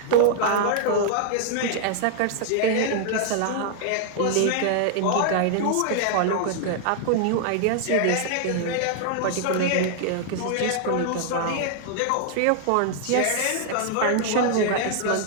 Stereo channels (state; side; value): different; both; correlation -0.01